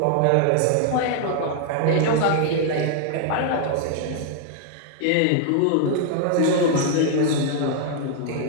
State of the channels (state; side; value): different; both; correlation 0.00